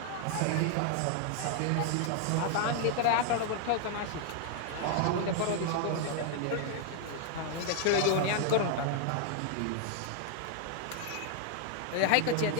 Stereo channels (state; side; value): different; both; correlation 0.00